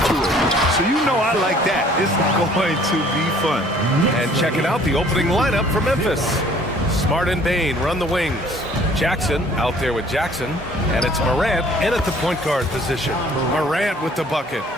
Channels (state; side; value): normal; both; correlation 0.55